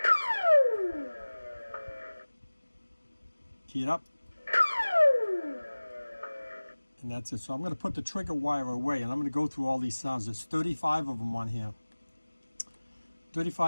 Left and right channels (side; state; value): both; inverted; correlation -1.00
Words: Key it up. And that's it. So I'm going to put the trigger wire away, and I'm going to go through all these sounds. There's 35 of them on here.